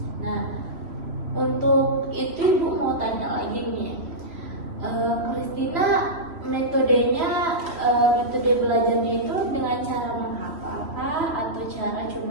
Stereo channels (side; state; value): left; late; 3.1 ms